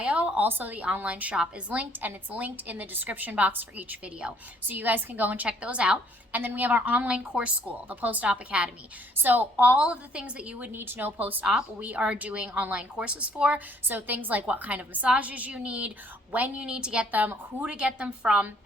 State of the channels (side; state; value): both; normal; correlation 0.63